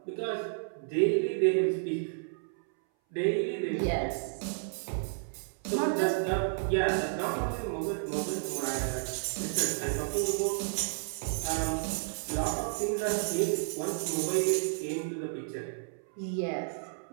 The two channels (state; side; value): silent; left; 57 dB below the other